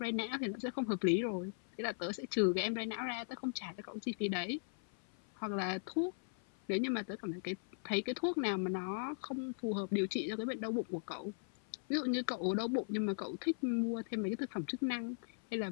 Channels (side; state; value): right; silent; 52 dB below the other